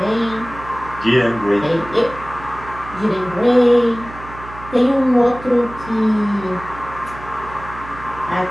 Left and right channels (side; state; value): right; noise; hum, 15 dB below the sound